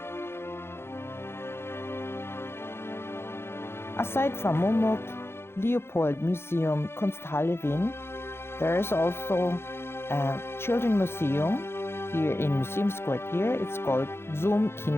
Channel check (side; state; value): right; late; 0.12 ms